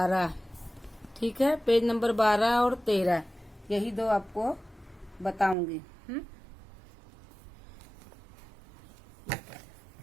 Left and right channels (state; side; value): drops out; left; at 5.6 s